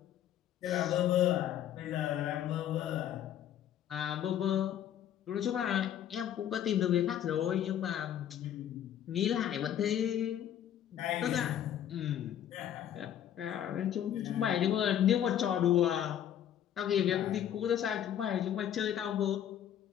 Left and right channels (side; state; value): right; quieter; 10.5 dB